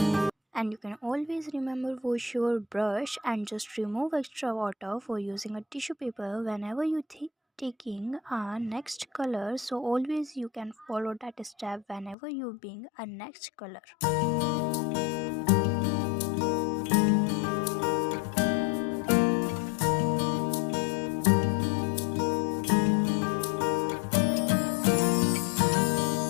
And you can always remember wash your brush and just remove extra water for using a tissue paper whenever you taking a next color. So always you can follow that step whenever you being a next color.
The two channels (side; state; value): right; drops out; at 12.2 s